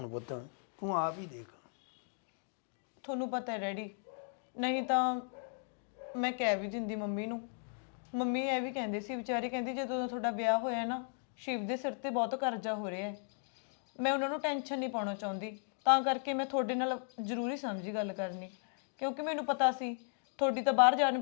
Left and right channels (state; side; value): silent; right; 54 dB below the other